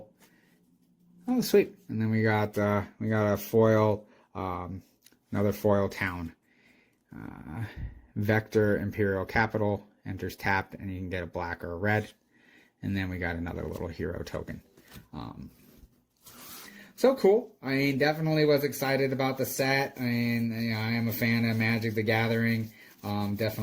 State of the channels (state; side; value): identical; both; correlation 1.00